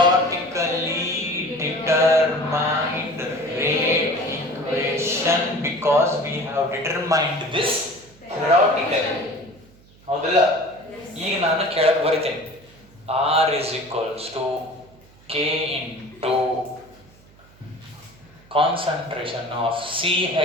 determined rate equation because we have determined this theoretically. ಹೌದಲ್ಲ? ಈಗ ನಾನು ಕೆಳಗೆ ಬರಿತೇನೆ. R is equals to K into concentration of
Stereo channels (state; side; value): noise; right; hum, 27 dB below the sound